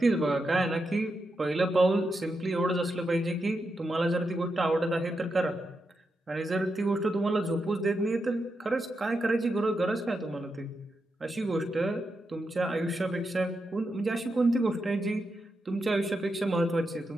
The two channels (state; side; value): normal; both; correlation 0.86